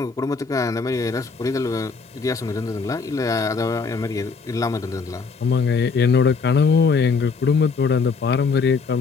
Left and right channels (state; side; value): quieter; right; 4.8 dB